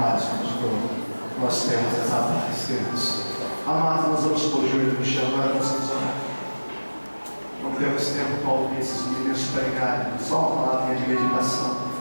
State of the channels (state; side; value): inverted; both; correlation -1.00